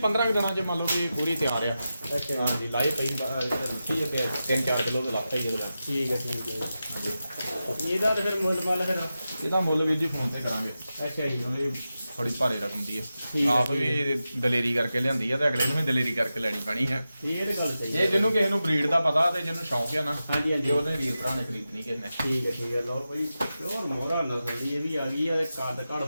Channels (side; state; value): both; inverted; correlation -0.92